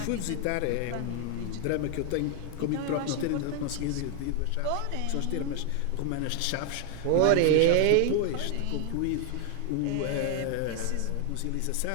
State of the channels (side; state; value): both; different; correlation 0.00